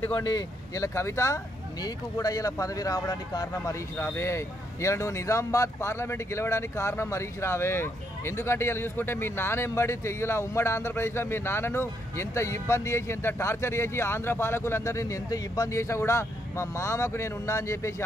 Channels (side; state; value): both; normal; correlation 0.75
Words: ఇలా కవిత నీకు కూడా ఇలా పదవి రావడానికి కారణం హరీష్ రావే. ఇలా నువ్వు నిజామాబాద్ పార్లమెంట్ గెలవడానికి కారణం హరీష్ రావే. ఎందుకంటే ఇలా చూసుకుంటే మీ నాన్న ఎంబడి ఇలా ఉమ్మడి ఆంధ్రప్రదేశ్లో మీ నాన్నను ఎంత ఇబ్బంది చేసి, ఎంత టార్చర్ చేసి, ఆంధ్ర పాలకులందరినీ ఎంత ఇబ్బంది చేసినా కూడా మా మామకు నేను ఉన్నా అని చెప్పేసి